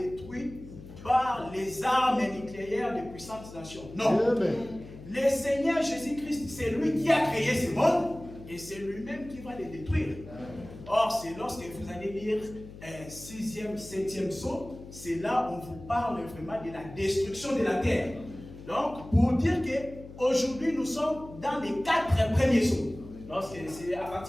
par les armes nucléaires des puissantes nations. Non. Le Seigneur Jésus-Christ, c'est lui qui a créé ce monde et c'est lui-même qui va les détruire. Or, c'est lorsque vous allez lire 6e, 7e psaume, c'est là où on vous parle vraiment de la destruction de la terre. Donc, pour dire qu'aujourd'hui, nous sommes dans les 4 premiers psaumes. Donc, c'est à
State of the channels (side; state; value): left; noise; hum, 15 dB below the sound